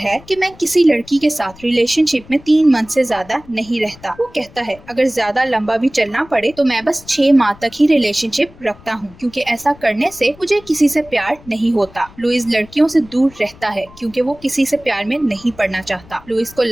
कि मैं किसी लड़की के साथ रिलेशनशिप में 3 मंथ से ज्यादा नहीं रहता। वो कहता है, अगर ज्यादा लंबा भी चलना पड़े तो मैं बस 6 माह तक ही रिलेशनशिप रखता हूँ, क्योंकि ऐसा करने से मुझे किसी से प्यार नहीं होता। लुइस लड़कियों से दूर रहता है क्योंकि वो किसी से प्यार में नहीं पड़ना चाहता। लुइस को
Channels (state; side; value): noise; left; rumble, 23 dB below the sound